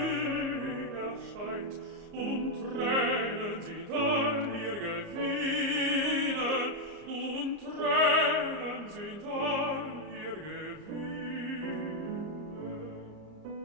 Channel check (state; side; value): late; left; 34 ms